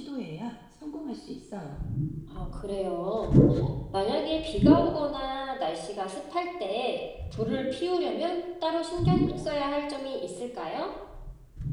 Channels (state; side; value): identical; both; correlation 1.00